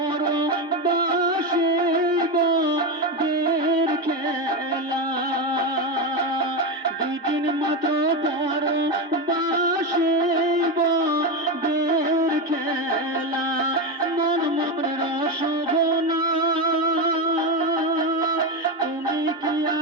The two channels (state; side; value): normal; both; correlation 0.14